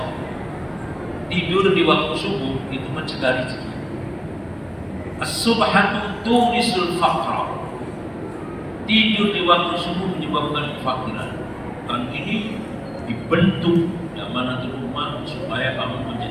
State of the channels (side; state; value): both; identical; correlation 1.00